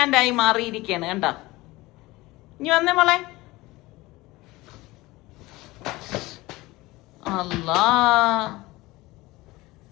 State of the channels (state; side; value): quieter; right; 20.2 dB